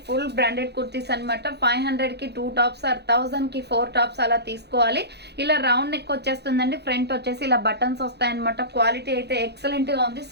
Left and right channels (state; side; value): late; left; 0.48 ms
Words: ఫుల్ బ్రాండెడ్ కుర్తీస్ అనమాట. 500 కి 2 టాప్స్ ఆర్ 1000 కి 4 టాప్స్ అలా తీసుకోవాలి. ఇలా రౌండ్ నెక్ వచ్చేస్తుందండి. ఫ్రంట్ వచ్చేసి ఇలా బటన్స్ వస్తాయన్నమాట. క్వాలిటీ అయితే ఎక్సలెంట్ గా ఉంది.